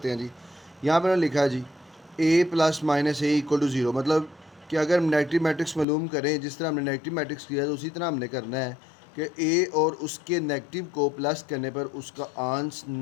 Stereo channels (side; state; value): right; drops out; at 5.9 s